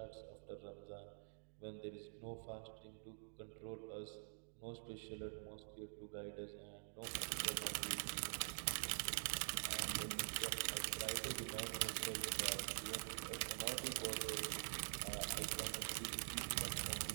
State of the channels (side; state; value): left; silent; digital silence